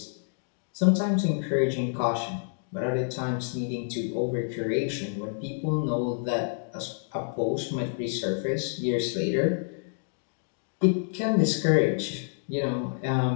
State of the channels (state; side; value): silent; right; digital silence